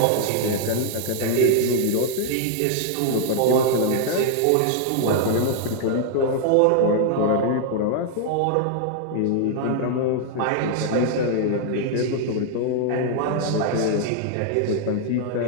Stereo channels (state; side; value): different; both; correlation 0.00